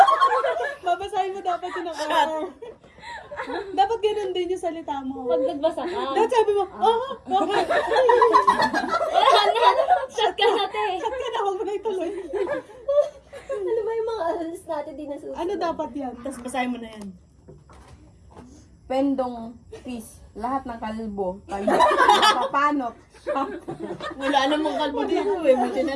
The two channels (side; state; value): both; identical; correlation 1.00